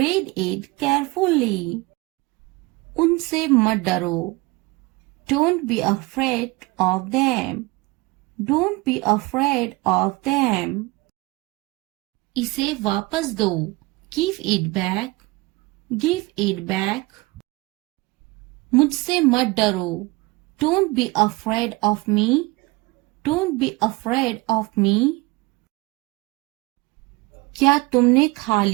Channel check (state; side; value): quieter; left; 23.2 dB